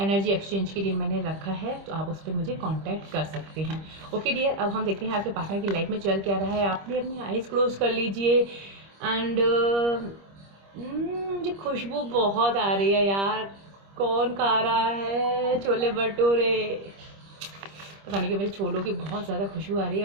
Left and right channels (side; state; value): left; late; 25 ms